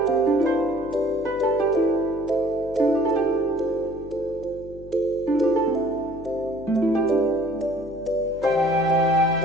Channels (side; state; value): left; noise; hum, 18 dB below the sound